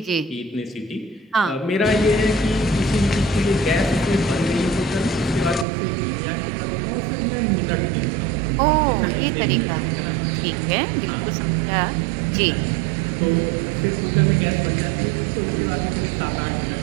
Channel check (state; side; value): drops out; left; at 5.7 s